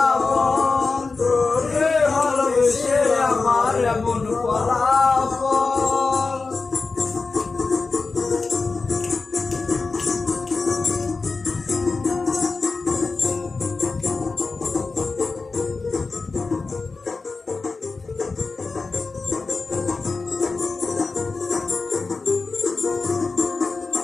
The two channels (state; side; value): quieter; right; 4.1 dB